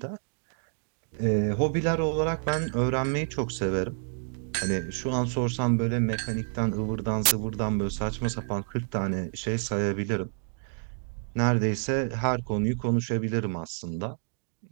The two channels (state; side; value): silent; left; 59 dB below the other